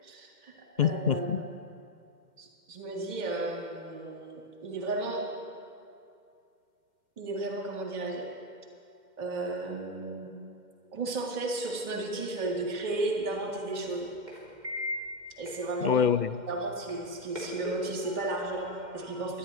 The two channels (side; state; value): left; late; 2.1 ms